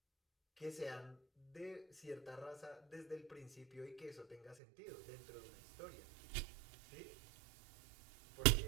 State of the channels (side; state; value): left; drops out; at 4.5 s